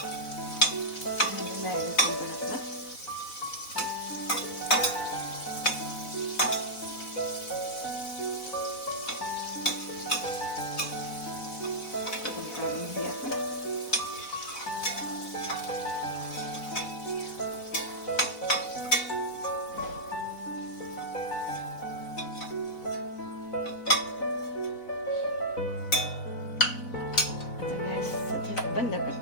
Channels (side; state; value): right; late; 4.0 ms